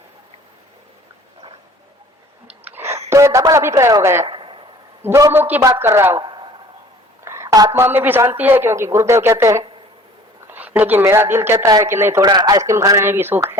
तो ये डबल अभिप्राय हो गया, दो मुख की बात कर रहा हूं। आत्मा में भी शांति है क्योंकि गुरुदेव कहते हैं, लेकिन मेरा दिल कहता है कि नहीं, थोड़ा आइसक्रीम खाने में भी सुख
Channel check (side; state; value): both; normal; correlation 0.50